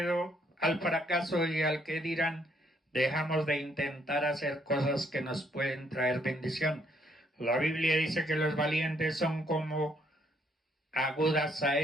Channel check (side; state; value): both; normal; correlation 0.69